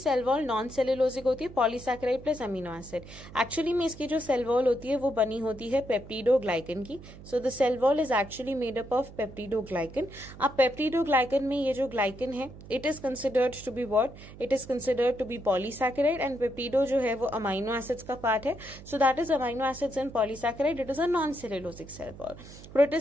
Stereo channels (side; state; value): right; noise; hum, 17 dB below the sound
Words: वॉल नॉन सेलुलोजिक होती है, polysaccharide plus amino acid. Actually में इसकी जो सेल वॉल होती है वो बनी होती है पेप्टिडोग्लाइकन की. So the cell wall is actually made up of peptidoglycan. अब पेप्टिडोग्लाइकन में ये जो ग्लाइकन है it is considered to be what? It is considered to be polysaccharide and peptido जो है वो अमीनो एसिड्स का पार्ट है. So that is amino acids and polysaccharide. It is a non cellulosic cell wall.